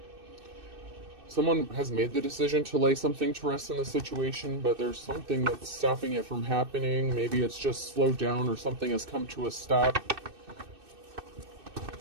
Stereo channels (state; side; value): late; left; 2.6 ms